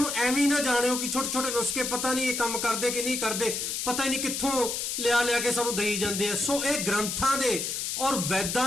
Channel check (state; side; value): noise; left; hiss, 2 dB below the sound